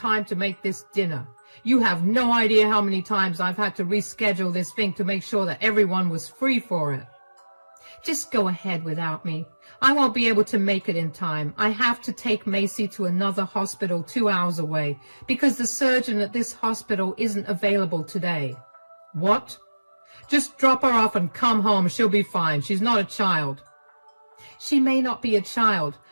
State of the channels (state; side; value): inverted; both; correlation -1.00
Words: to make this dinner. You have no idea how many times I've had to reschedule this thing to make sure that everyone was free for it." "Just go ahead without me. I won't be able to make it in time. I have to take Macy to another hospital 2 hours away because the surgeon at this hospital isn't available today." "What?" "Just drop her off and come home. She'll be fine. She's not a child." "She may not be a child,